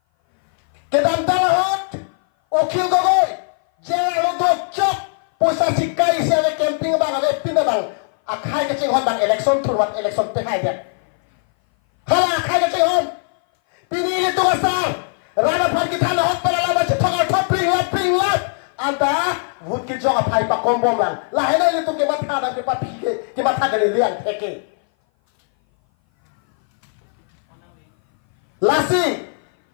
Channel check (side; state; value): right; silent; 59 dB below the other